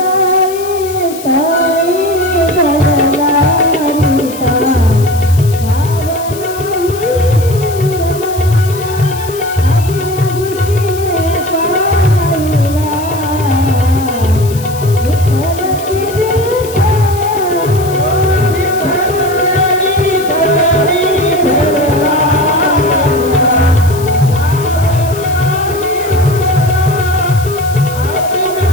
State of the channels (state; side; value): noise; left; hiss, 15 dB below the sound